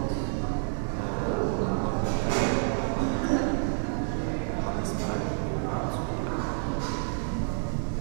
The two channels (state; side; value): silent; left; 59 dB below the other